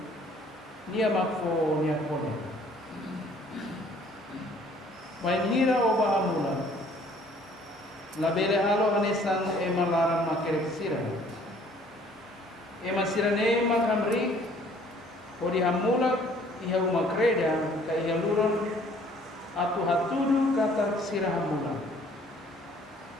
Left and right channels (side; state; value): both; normal; correlation 0.57